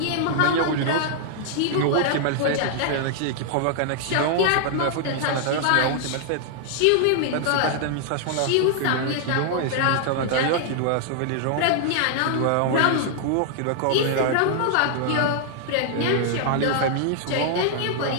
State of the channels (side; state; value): both; different; correlation -0.01